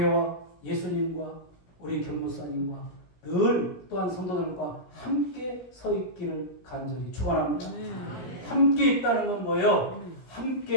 예수님과 우리 견목사님과 늘 또한 성도들과 함께 서 있기를 간절히 축원합니다. 함께 있다는 건 뭐예요?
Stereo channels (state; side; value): late; right; 16 ms